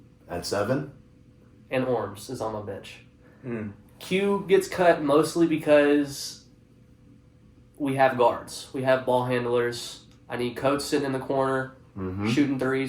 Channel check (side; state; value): both; identical; correlation 1.00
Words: At 7? And Orms is on my bench. Mm. Q gets cut mostly because we have guards. We have ball handlers. I need Coates sitting in the corner, shooting